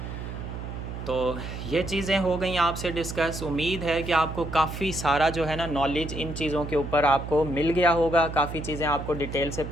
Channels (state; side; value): noise; right; hum, 8 dB below the sound